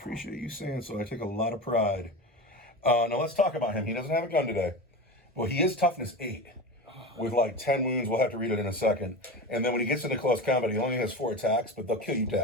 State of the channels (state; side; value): normal; both; correlation 0.27